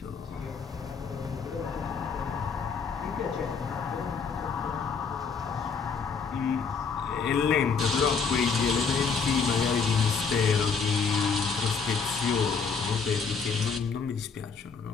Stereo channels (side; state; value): right; quieter; 5.4 dB